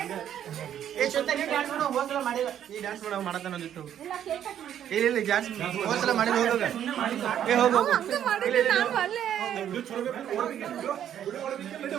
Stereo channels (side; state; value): left; quieter; 10.2 dB